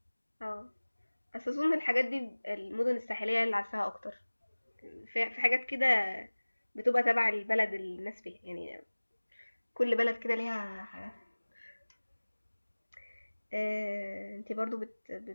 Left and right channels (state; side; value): inverted; both; correlation -1.00